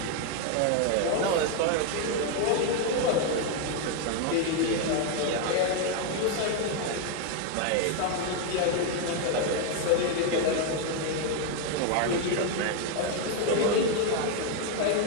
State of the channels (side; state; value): both; different; correlation 0.01